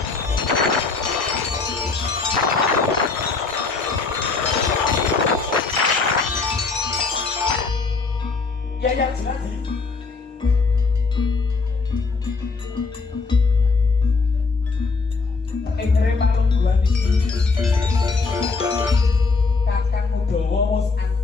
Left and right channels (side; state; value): right; quieter; 4.3 dB